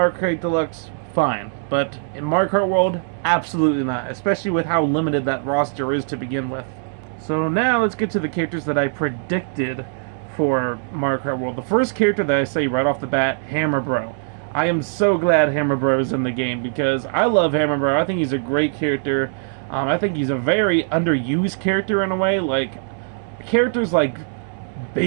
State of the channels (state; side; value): silent; left; 65 dB below the other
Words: Kart Deluxe, fine. But in Mario Kart World, absolutely not. Especially with how limited that roster is to begin with. So now let's get to the characters that I predicted for Mario Kart World. The first character that I say right off the bat, Hammer Bro. I am so glad Hammer Bro is in the game because I love Hammer Bro. I think he's a great character. I think he's a very underused character in a way. Like, characters like